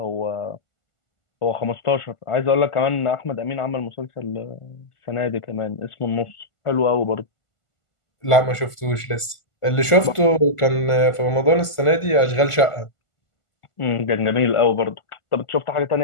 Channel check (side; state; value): right; late; 1.5 ms